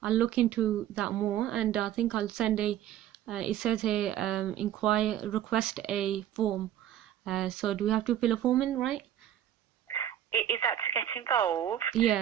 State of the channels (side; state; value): left; quieter; 11.3 dB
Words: look into that more, and I think I'll send it says here, request a form. So do we have to fill a form in, right? Is that to get involved?